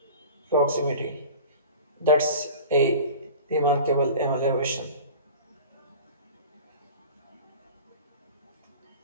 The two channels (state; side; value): inverted; both; correlation -0.37